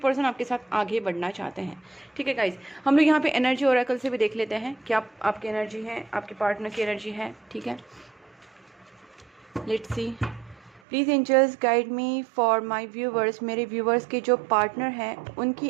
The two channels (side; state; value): left; drops out; at 10.8 s